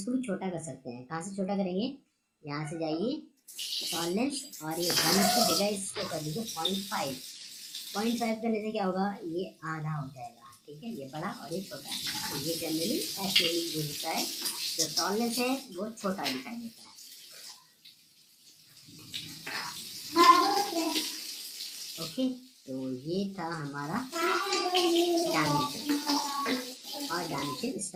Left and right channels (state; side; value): identical; both; correlation 1.00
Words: भी छोटा कर सकते हैं। कहाँ से छोटा करेंगे, यहाँ से जाइए टॉलरेंस और ये 1 की जगह इसको कर दीजिए 0.5 करने से क्या होगा, ये आधा हो जाएगा, ठीक है। ये बड़ा और ये छोटा, तो ये जनरली ऐसे ही यूज होता है, जो टॉलरेंस है वो छोटा दिखाई देता है। ओके, तो ये था हमारा डायमेंशन और डायमेंशन